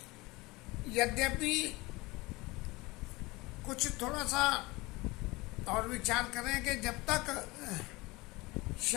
यद्यपि कुछ थोड़ा सा और विचार करें कि जब तक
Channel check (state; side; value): quieter; right; 22.6 dB